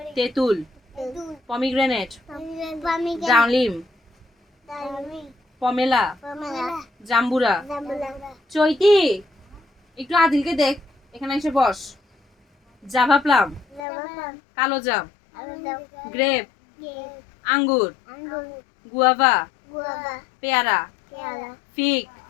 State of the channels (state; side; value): drops out; right; at 13.8 s